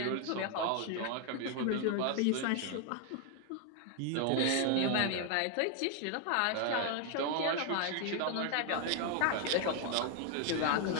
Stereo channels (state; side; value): different; both; correlation 0.00